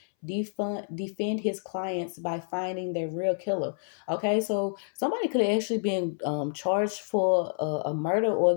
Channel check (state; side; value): silent; right; 58 dB below the other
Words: defend his clients by finding their real killer. Okay, so somebody could have actually been charged for a murder, or